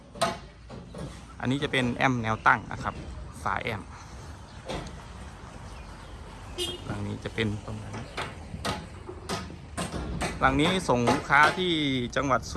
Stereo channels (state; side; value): identical; both; correlation 1.00